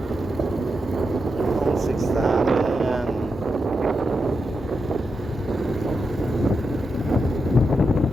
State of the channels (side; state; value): both; normal; correlation 0.86